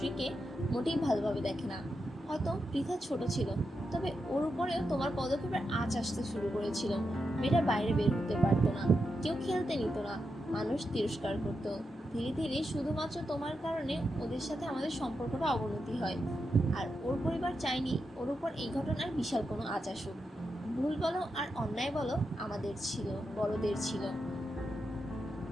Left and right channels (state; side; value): normal; both; correlation 0.86